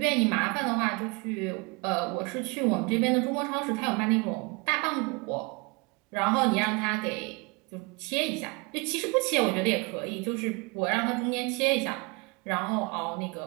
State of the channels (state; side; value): quieter; left; 28.7 dB